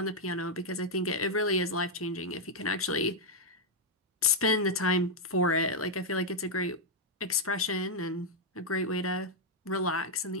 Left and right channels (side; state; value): both; normal; correlation -0.02